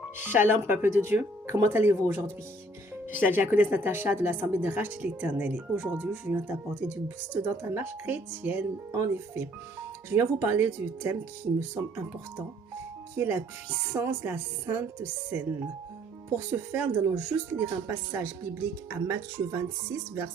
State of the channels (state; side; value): normal; both; correlation 0.61